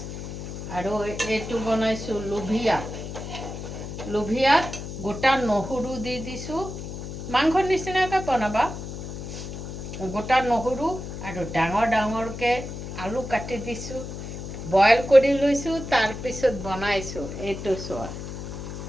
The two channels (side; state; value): left; noise; hum, 8 dB below the sound